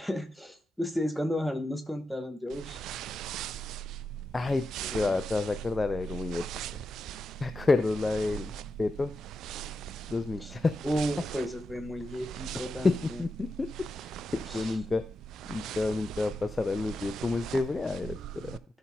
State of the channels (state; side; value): normal; both; correlation 0.88